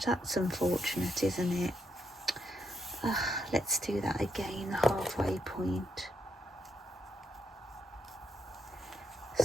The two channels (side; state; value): both; normal; correlation 0.78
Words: That's unfortunate, isn't it? Let's do that again, the halfway point.